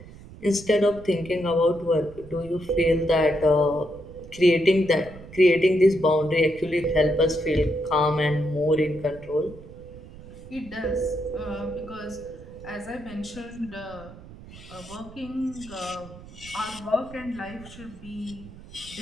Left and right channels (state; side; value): noise; right; rumble, 18 dB below the sound